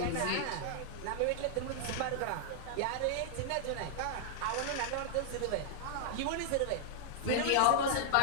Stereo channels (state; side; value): different; both; correlation -0.01